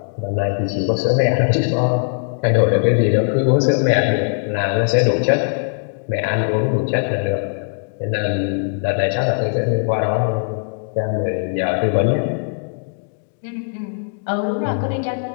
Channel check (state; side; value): silent; right; digital silence